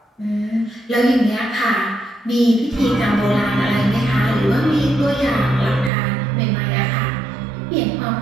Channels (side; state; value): left; drops out; at 5.9 s